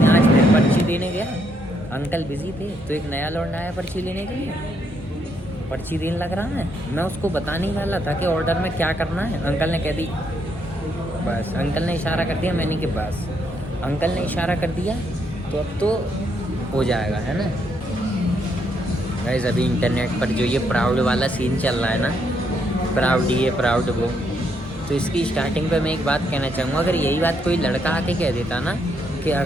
आज फिर पर्ची देने गया, अंकल बिजी थे, तो एक नया लौंडा आया पर्ची लेने के लिए, पर्ची देने लग रहा है, मैं उसको बताने वाला था कि ऑर्डर में क्या करना है, अंकल ने कह दी बस, अंकल ने इशारा कर दिया, मैंने कि बस अंकल ने इशारा कर दिया, तो अब तो हो जाएगा, है ना। गाइस अभी इंटरनेट पर जो ये प्राउड वाला सीन चल रहा है ना, प्राउड ये प्राउड वो, तो इसकी स्टार्टिंग पे मैं एक बात कहना चाहूँगा, अगर यही बात कोई लड़का आके कह देता ना कि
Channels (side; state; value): both; normal; correlation 0.75